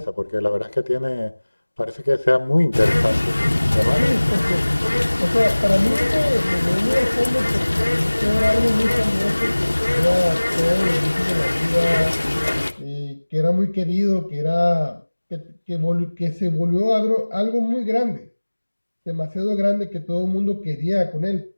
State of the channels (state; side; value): inverted; both; correlation -1.00